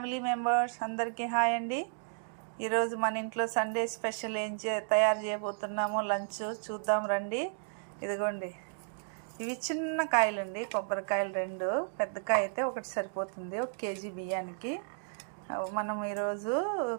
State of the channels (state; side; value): silent; left; digital silence